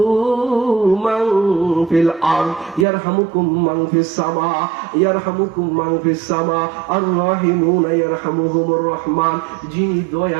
মান ফিল আরদ ইয়ারহামুকুম মান ফিস সামা ইয়ারহামুকুম মান ফিস সামা আর রাহিমুনা ইয়ারহামুহুমুর রহমান। যিনি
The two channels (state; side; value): drops out; left; at 2.9 s